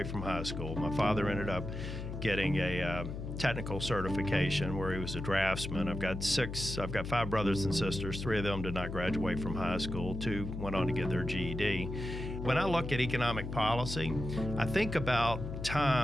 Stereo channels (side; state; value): left; noise; hum, 6 dB below the sound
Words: from high school. My father ended up getting a technical certification where he was a draftsman. I've got 5 brothers and sisters. 3 of them did not graduate from high school. 2 went on to get their GED. When I look at economic policy, I think about